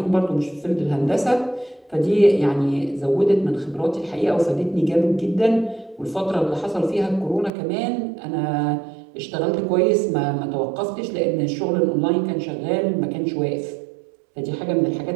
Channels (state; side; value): drops out; left; at 7.5 s